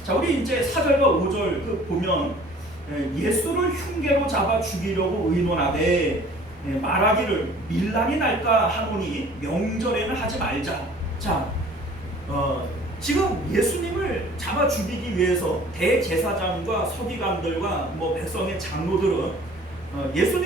자, 우리 이제 4절과 5절 그 보면 예수를 흉계로 잡아 죽이려고 의논하되 말하기를 밀란이 날까 하노니 명절에는 하지 말자. 자, 지금 예수님을 잡아 죽이기 위해서 대제사장과 서기관들과 뭐 백성의 장로들은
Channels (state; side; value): normal; both; correlation 0.50